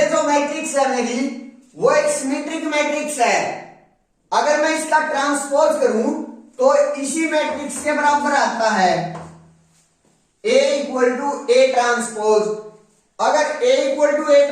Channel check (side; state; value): both; identical; correlation 1.00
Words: जो मैट्रिक्स है मेरी वो एक सिमेट्रिक मैट्रिक्स है। अगर मैं इसका ट्रांसपोज करूं तो इसी मैट्रिक्स के बराबर आता है, A equal to A transpose. अगर A equal to A